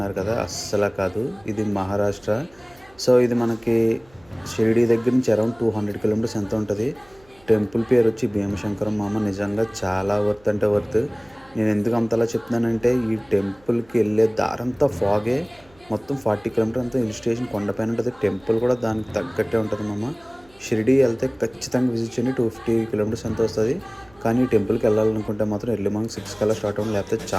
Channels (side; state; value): right; noise; hum, 29 dB below the sound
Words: కదా! అస్సల కాదు. ఇది మహారాష్ట్ర. సో, ఇది మనకి షిరిడీ దగ్గర నుంచి అరౌండ్ 200 కిలోమీటర్స్ ఎంతో ఉంటది. టెంపుల్ పేరొచ్చి భీమశంకరం మామ. నిజంగా చాలా వర్త్ అంటే వర్త్. నేనెందుకు అంతలా చెప్తున్నానంటే ఈ టెంపుల్‌కి ఎళ్ళే దారంతా ఫాగే. మొత్తం 40 కిలోమీటర్ అంతా హిల్ స్టేషన్ కొండపైన ఉంటది. టెంపుల్ కూడా దానికి తగ్గట్టే ఉంటది మామ. షిరిడీ ఎళ్తే ఖచ్చితంగా విజిట్ చేయండి. 250 కిలోమీటర్స్ ఎంతో వస్తది. కానీ ఈ టెంపుల్‌కెళ్ళాలనుకుంటే మాత్రం ఎర్లీ మార్నింగ్ 6 కల్లా స్టార్ట్ అవ్వండి. లేకపోతే